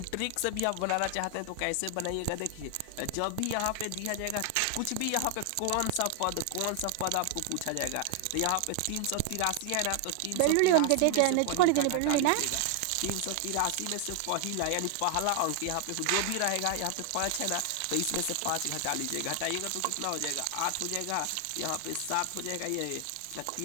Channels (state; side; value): different; both; correlation 0.00